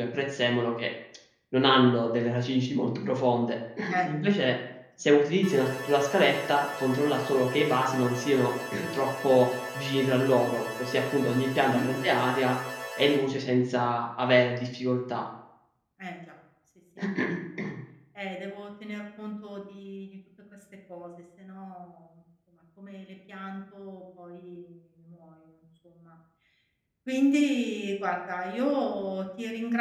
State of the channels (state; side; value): identical; both; correlation 1.00